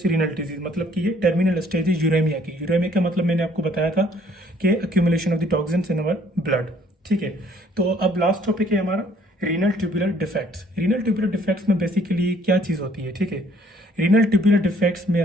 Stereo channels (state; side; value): normal; both; correlation 0.61